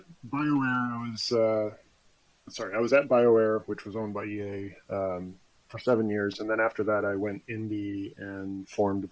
BioWare, I was at BioWare, which was owned by EA, for 7 years, and then after that, I went indie and formed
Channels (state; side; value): identical; both; correlation 1.00